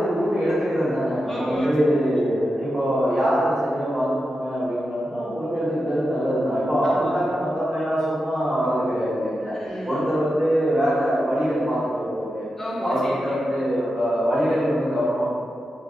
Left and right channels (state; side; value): normal; both; correlation 0.89